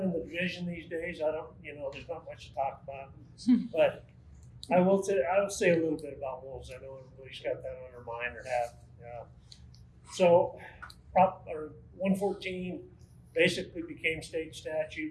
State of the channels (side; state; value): both; identical; correlation 1.00